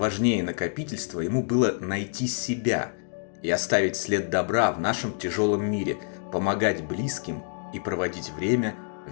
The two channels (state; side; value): silent; right; 60 dB below the other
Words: накопительства ему было найти себя и оставить след добра в нашем тяжелом мире, помогать близким и проводить время